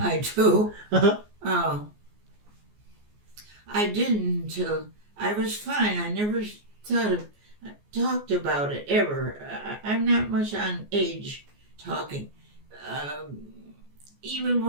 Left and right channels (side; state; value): left; late; 14 ms